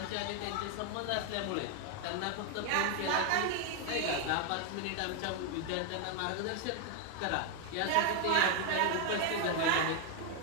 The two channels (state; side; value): different; both; correlation 0.01